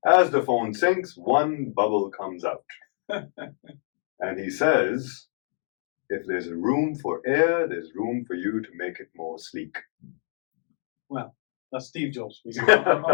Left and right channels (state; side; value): silent; right; 61 dB below the other